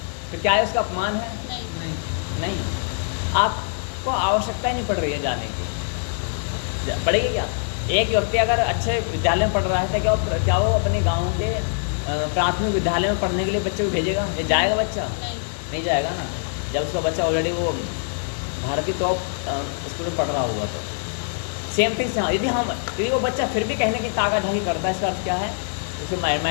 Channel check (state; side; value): silent; right; 63 dB below the other